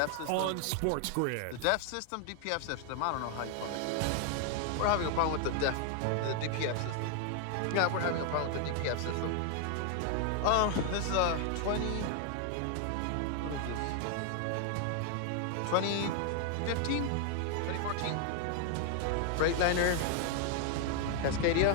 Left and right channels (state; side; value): different; both; correlation 0.00